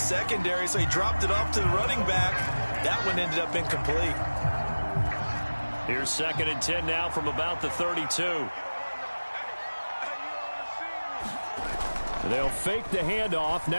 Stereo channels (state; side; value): inverted; both; correlation -1.00